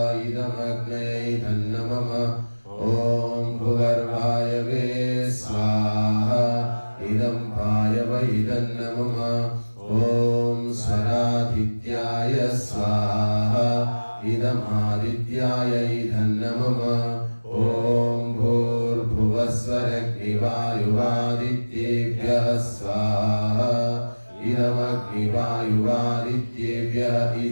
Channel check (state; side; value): inverted; both; correlation -1.00